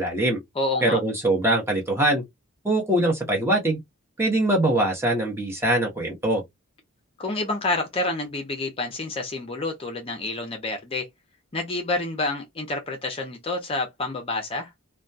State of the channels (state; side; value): normal; both; correlation 0.30